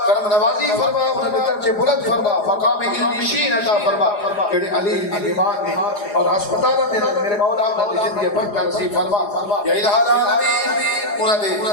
کرم نوازی فرما انہوں نے درجے بلند فرما مقام علمشین عطا فرما کہ علی ایمان نے اور ہسپتال میں میرے مولا انہوں نے زندگی برکت نصیب فرما یا الہ العالمین انہوں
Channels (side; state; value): right; late; 4.9 ms